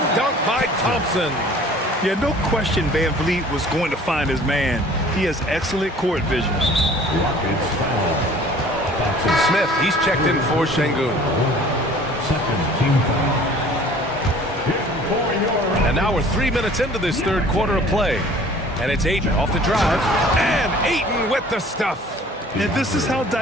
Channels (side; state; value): both; normal; correlation 0.50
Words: dunk by Thompson. Yeah, no question Van Vliet was going to find his man. He has excellent court vision. Rockets foul. Thompson. Smith, he's checked in for Şengün. Second team foul. And now we're 3 minutes into this third quarter of play. And it's Ayton off the drive. And Ayton with the stuff. And this is how